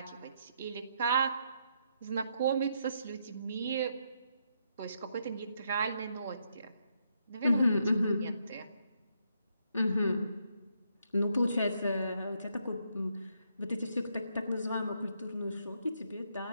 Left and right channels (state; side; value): inverted; both; correlation -0.76